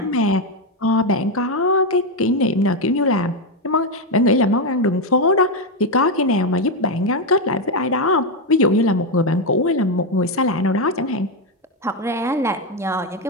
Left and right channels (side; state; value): both; normal; correlation 0.05